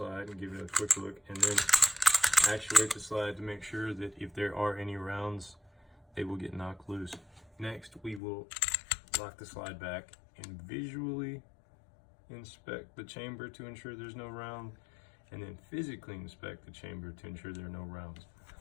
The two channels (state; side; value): drops out; right; at 8.2 s